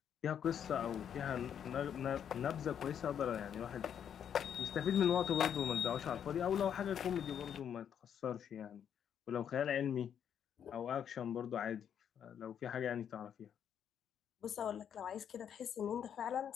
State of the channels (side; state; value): right; quieter; 8.7 dB